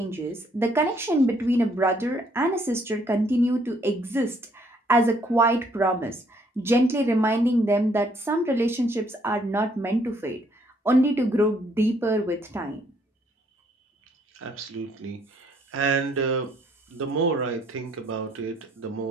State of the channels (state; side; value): normal; both; correlation 0.67